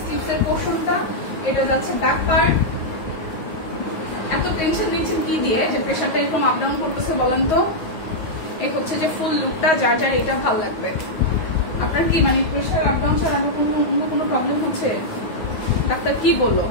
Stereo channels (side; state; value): right; late; 9.5 ms